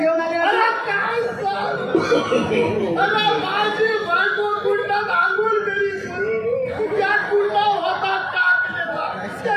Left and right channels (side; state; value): both; identical; correlation 1.00